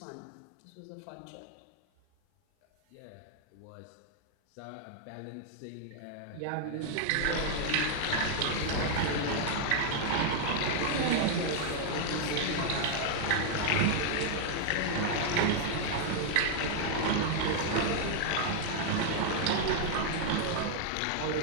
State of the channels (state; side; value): different; both; correlation 0.00